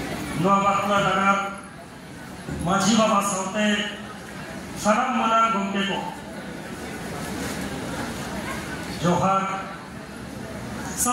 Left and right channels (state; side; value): identical; both; correlation 1.00